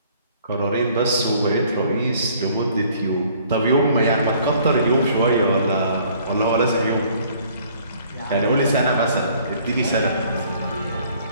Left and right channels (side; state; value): both; inverted; correlation -0.58